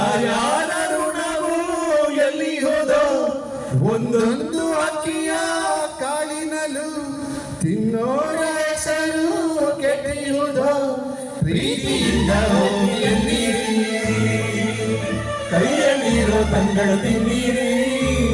ಋಣವು ಎಲ್ಲಿ ಹೋದೋ ಒಂದೊಂದು ಅಕ್ಕಿಯ ಕಾಳಿನಲು ತಿನ್ನೋರ ಹೆಸರು ಕೆಟ್ಟಿರುವುದೋ ಪ್ರೀತಿಯಿಂದ ಹೋಗಿ ಎಲ್ಲಿ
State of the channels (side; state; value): both; identical; correlation 1.00